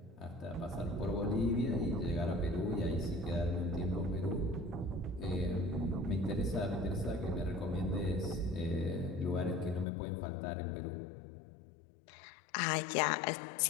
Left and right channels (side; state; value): right; drops out; at 9.9 s